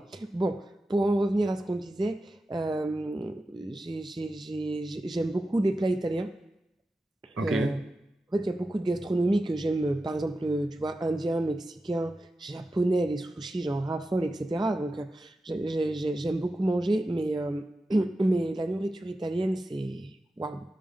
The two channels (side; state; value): both; normal; correlation 0.92